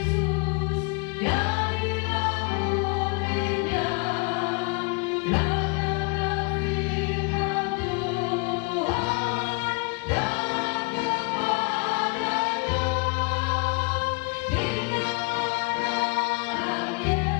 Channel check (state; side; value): quieter; right; 32.2 dB